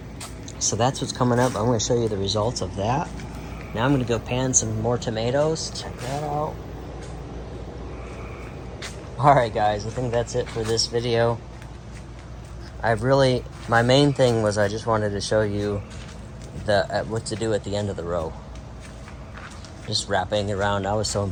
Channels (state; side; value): identical; both; correlation 1.00